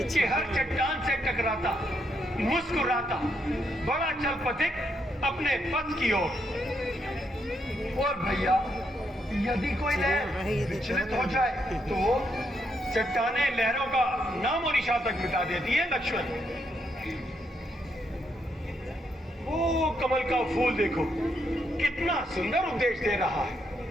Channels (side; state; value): both; normal; correlation 0.77